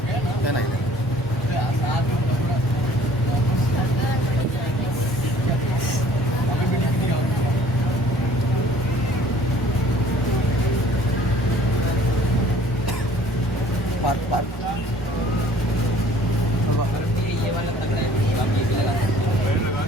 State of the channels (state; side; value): normal; both; correlation 0.53